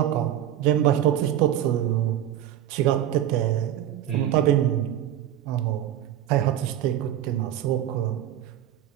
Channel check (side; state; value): left; quieter; 11.6 dB